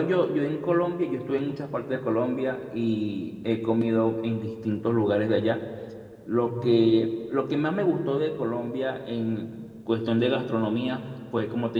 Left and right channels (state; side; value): identical; both; correlation 1.00